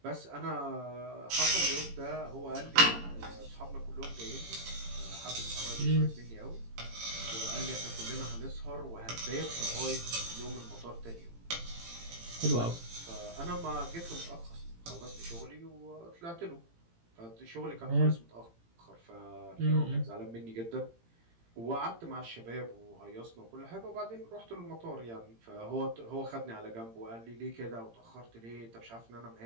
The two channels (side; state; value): left; late; 18 ms